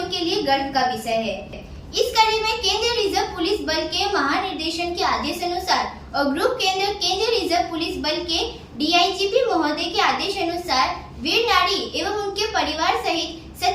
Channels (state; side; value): identical; both; correlation 1.00